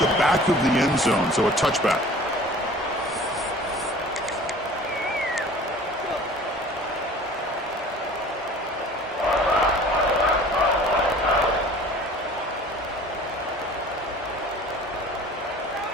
back of the end zone, so a touchback.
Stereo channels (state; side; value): normal; both; correlation 0.46